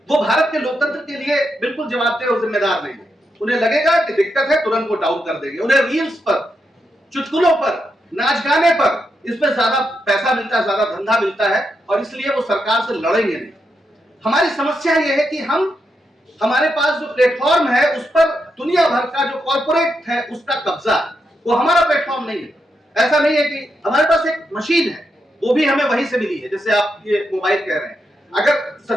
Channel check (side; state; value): both; normal; correlation 0.84